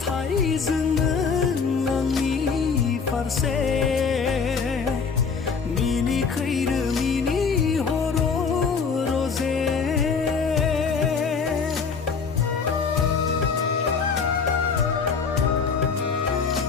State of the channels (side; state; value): right; quieter; 5.5 dB